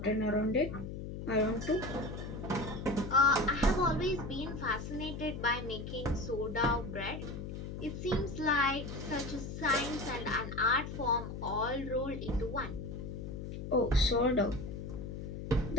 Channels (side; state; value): left; noise; hum, 7 dB below the sound